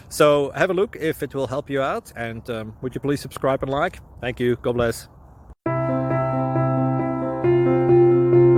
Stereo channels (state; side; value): identical; both; correlation 1.00